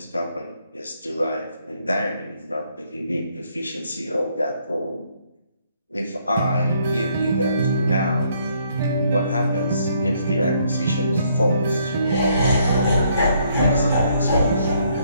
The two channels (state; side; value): inverted; both; correlation -0.69